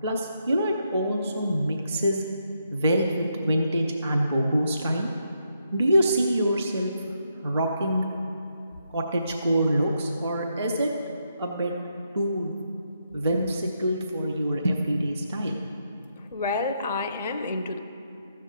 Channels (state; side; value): inverted; both; correlation -0.79